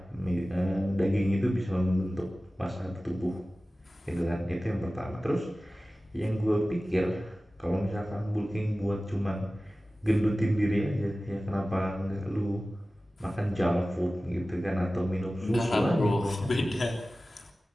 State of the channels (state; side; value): normal; both; correlation 0.96